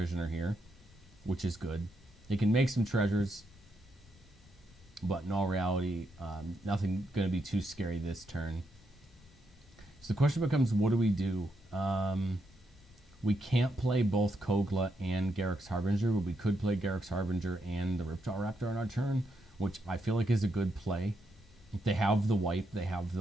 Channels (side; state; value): both; normal; correlation 0.80